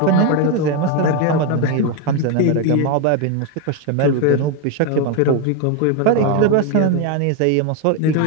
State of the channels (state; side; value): different; both; correlation 0.02